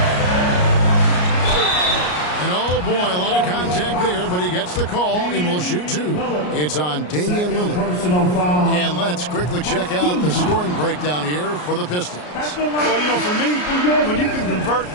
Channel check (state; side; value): late; right; 33 ms